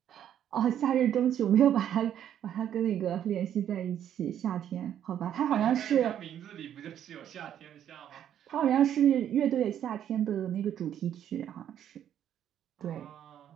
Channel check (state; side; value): quieter; left; 10.1 dB